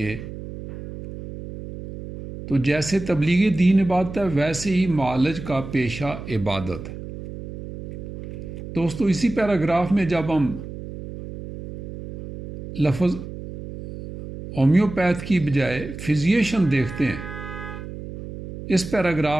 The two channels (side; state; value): right; noise; hum, 11 dB below the sound